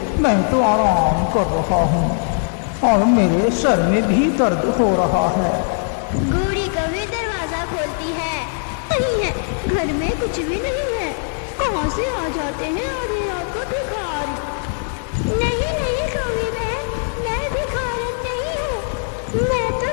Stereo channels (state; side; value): silent; right; 65 dB below the other